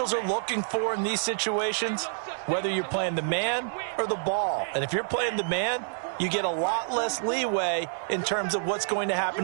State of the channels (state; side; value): silent; left; 59 dB below the other